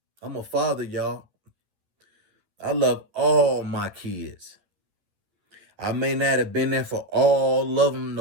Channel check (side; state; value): left; late; 11 ms